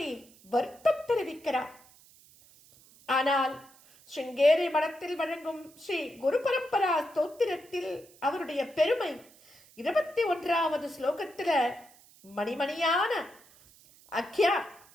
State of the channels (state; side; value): noise; right; hiss, 26 dB below the sound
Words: வருத்தம் தெரிவிக்கிறார். ஆனால் ஸ்ருங்கேரி மடத்தில் வழங்கும் ஸ்ரீ குரு பரம்பரா ஸ்தோத்திரத்தில் அவருடைய பெருமை 21வது ஸ்லோகத்துல